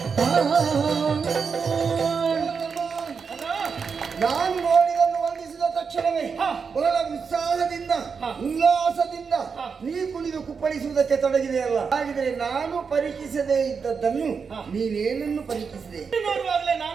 ನಾನು ನೋಡಿದನ್ನು ವಂದಿಸಿದ ತಕ್ಷಣವೇ ಬಹಳ ಉತ್ಸಾಹದಿಂದ ಉಲ್ಲಾಸದಿಂದ ನೀ ಕುಣಿದು ಕುಪ್ಪಳಿಸುವುದಕ್ಕೆ ತೊಡಗಿದೆಯಲ್ಲ. ಹಾಗಿದ್ರೆ ನಾನು ಪರೀಕ್ಷಿಸದೇ ಇದ್ದದ್ದನ್ನು ನೀನೇನನ್ನು ಪರೀಕ್ಷಿಸಿದೆ? ನೋಡುವಾಗಲೇ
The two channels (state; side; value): quieter; left; 5.7 dB